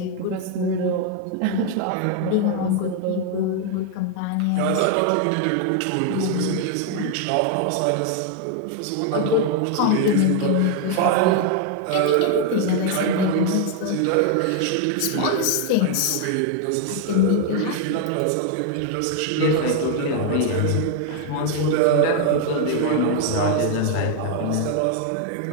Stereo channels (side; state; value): both; different; correlation 0.00